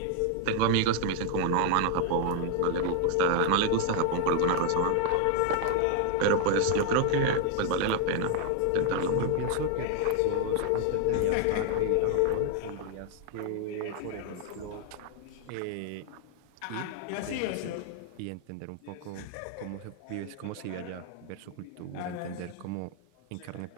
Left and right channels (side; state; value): both; different; correlation 0.00